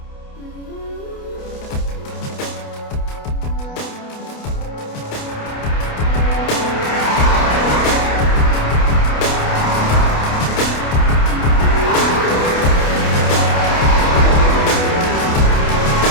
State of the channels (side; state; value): right; late; 28 ms